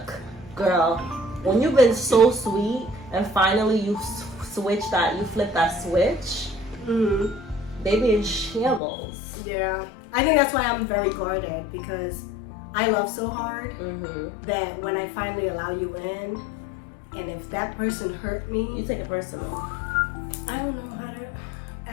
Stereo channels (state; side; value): drops out; right; at 8.8 s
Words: girl. When you've been so sweet and finally you flip that switch, they be in shambles. Yeah, I think that's why I'm very guarded, because I love so hard that when I finally allow you in, and if that person hurt me, you take it personal. I don't know how to